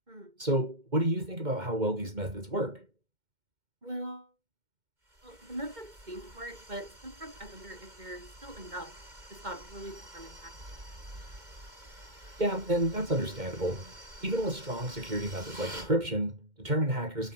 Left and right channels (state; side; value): late; left; 2.1 ms